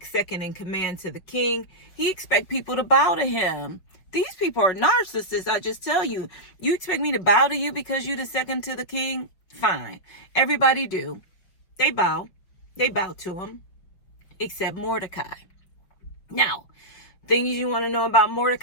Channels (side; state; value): right; late; 5.3 ms